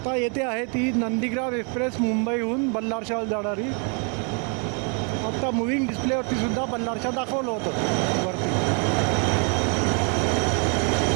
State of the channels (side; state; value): left; quieter; 38.0 dB